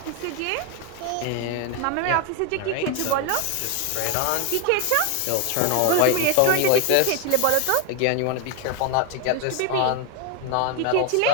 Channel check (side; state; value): both; different; correlation 0.01